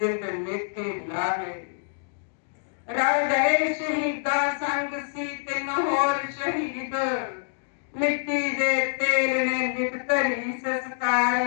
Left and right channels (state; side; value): silent; right; digital silence